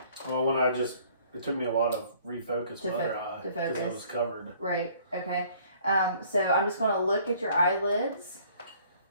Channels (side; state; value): both; inverted; correlation -0.57